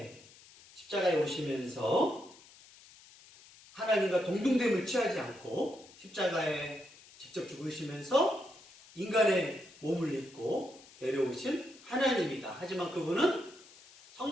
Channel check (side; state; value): left; noise; hiss, 23 dB below the sound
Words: 십자가에 오시면서 하나님과 동등됨을 취하지 않고 십자가에 직접 죽으시면서 인간의 몸을 입고 내려오신 하나님이다. 하지만 그분은